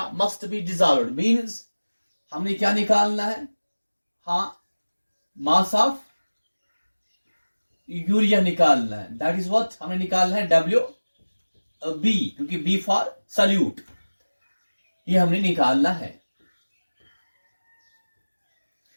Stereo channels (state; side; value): inverted; both; correlation -1.00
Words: must be dissolved means हमने क्या निकालना है? हाँ, मास ऑफ यूरिया निकालना है। दैट इज व्हाट हमें निकालना है, डब्ल्यू बी, क्योंकि बी फॉर सल्यूट, ये हमने निकालना है।